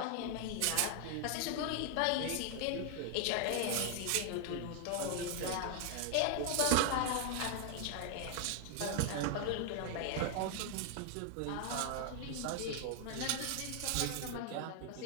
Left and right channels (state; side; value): different; both; correlation 0.00